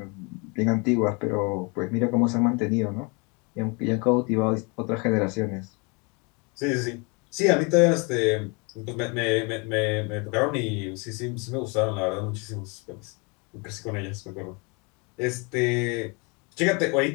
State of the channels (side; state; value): right; quieter; 31.4 dB